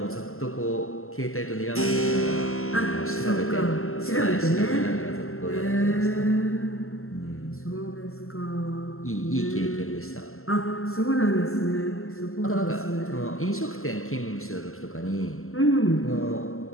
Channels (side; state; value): right; late; 0.62 ms